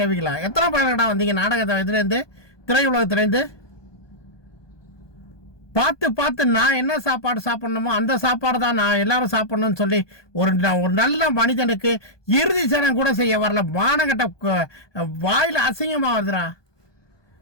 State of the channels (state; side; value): late; right; 1.2 ms